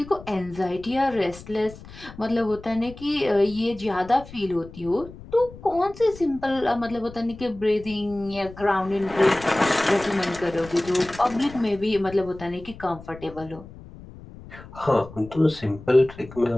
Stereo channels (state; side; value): noise; left; rumble, 17 dB below the sound